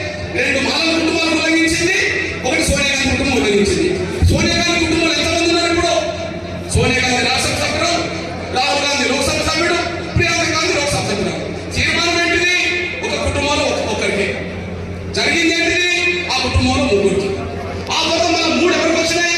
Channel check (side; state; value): both; identical; correlation 1.00